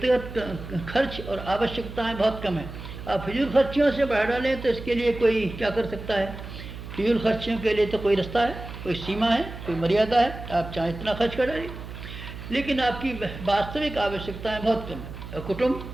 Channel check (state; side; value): noise; right; hum, 11 dB below the sound